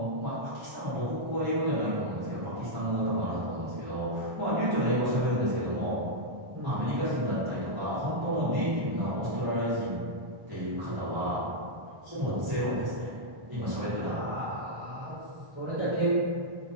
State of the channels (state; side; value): late; left; 1.2 ms